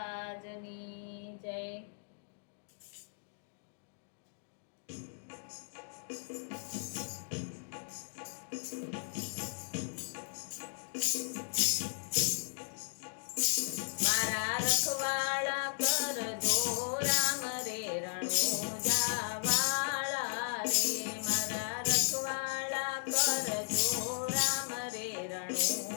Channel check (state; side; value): silent; right; digital silence